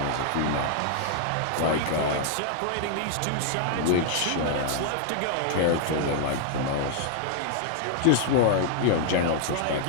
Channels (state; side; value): different; both; correlation -0.01